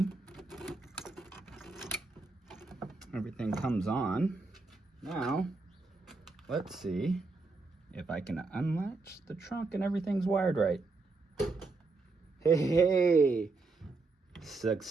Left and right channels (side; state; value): left; quieter; 3.7 dB